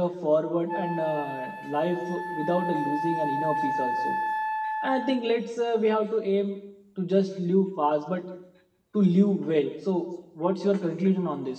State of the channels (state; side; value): identical; both; correlation 1.00